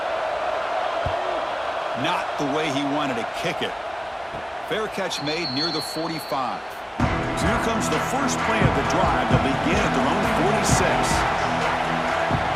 Not the way he wanted to kick it. Fair catch made near the 45. So here comes the first play of the drive. They'll begin at their own 46.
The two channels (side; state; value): both; identical; correlation 1.00